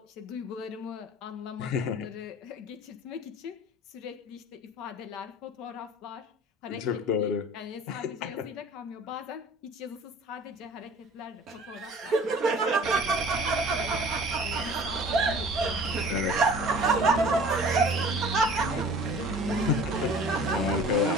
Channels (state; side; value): normal; both; correlation 0.46